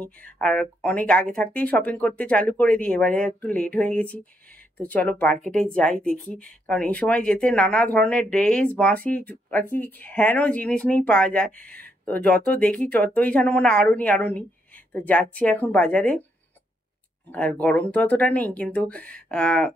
আর অনেক আগে থাকতেই শপিং করতে চালু করে দিই, এবারে একটু লেট হয়ে গেছি। তো চলো মার্কেটে যাই, দেখি। কারণ এই সময় যেতে নানা ধরনের ড্রেস বাঁশি আর কি হেন জিনিস নেই পাওয়া যায়। তো যত দেখি ততই যেন মনে আরো নি। তো যাচ্ছি এখন বাজারে। আর গরম তো অতটা নেই, কিন্তু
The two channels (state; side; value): normal; both; correlation 0.76